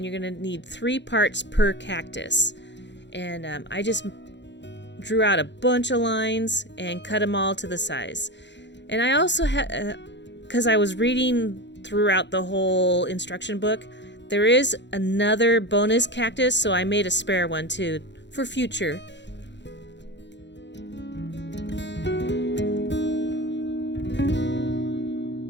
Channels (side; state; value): right; late; 0.52 ms